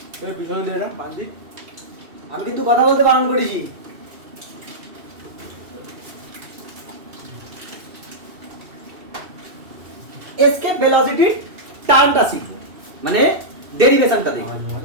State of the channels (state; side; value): late; left; 2.7 ms